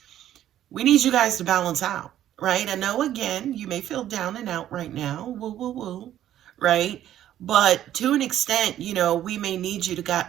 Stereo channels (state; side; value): quieter; left; 11.9 dB